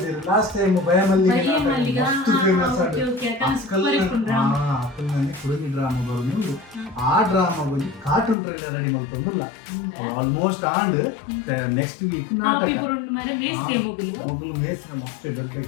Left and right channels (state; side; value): drops out; right; at 8.3 s